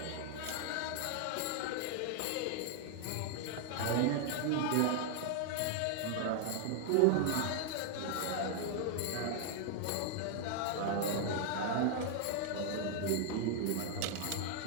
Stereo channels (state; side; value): different; both; correlation 0.00